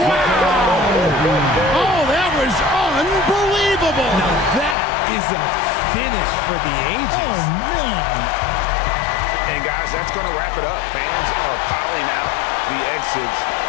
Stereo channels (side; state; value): right; drops out; at 4.8 s